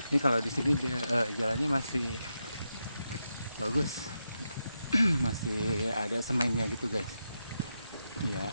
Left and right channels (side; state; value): both; inverted; correlation -0.86